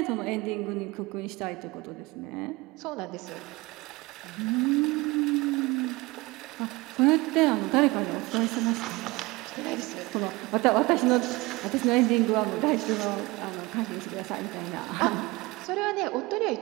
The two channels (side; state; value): left; quieter; 22.5 dB